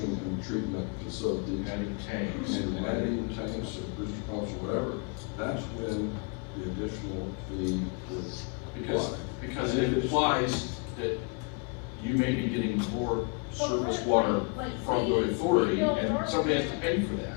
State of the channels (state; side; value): quieter; right; 33.3 dB